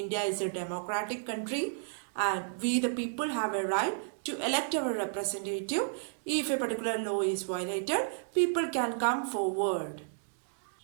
is a democratic country and we the people have a right to elect our representative. If a particular law is violated, people can come forward.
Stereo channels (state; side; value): silent; left; digital silence